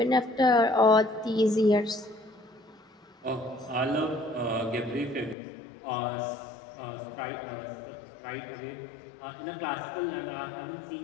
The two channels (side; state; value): right; drops out; at 5.4 s